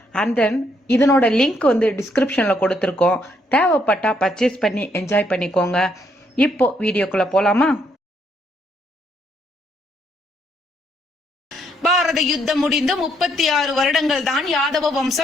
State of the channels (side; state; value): both; normal; correlation 0.72